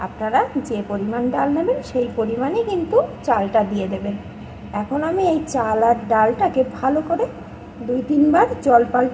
আপনারা যে পরিমাণ ডাল নেবেন সেই পরিমাণে কিন্তু চালটা দিয়ে দেবেন। এখন আমি এই চাল আর ডালটাকে ভালো করে 2-3 বার জল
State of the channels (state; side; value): identical; both; correlation 1.00